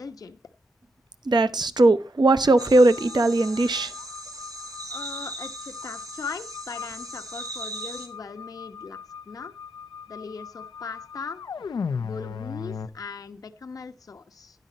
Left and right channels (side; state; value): both; normal; correlation 0.81